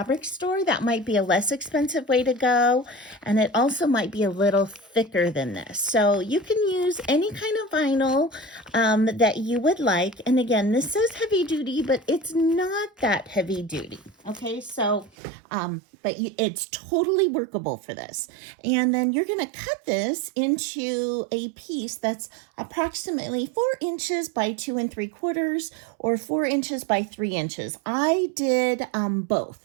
store. That might be a less expensive way to go. And it also might be a little thicker than this. So you can use any kind of vinyl that you would like. And again, this says heavy duty, but it's not that heavy duty. Okay, so, but it's totally workable for this. And then you're going to cut this into a piece that's approximately 4 inches by 2 3/4, or 4 inches by 3 inches. I did both.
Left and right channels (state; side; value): drops out; left; at 15.1 s